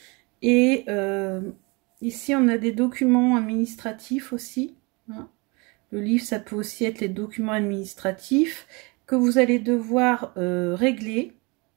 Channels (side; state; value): left; quieter; 28.0 dB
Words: Et ici on a des documents administratifs aussi, hein. Le livre, ça peut aussi être les documents administratifs que vous allez devoir régler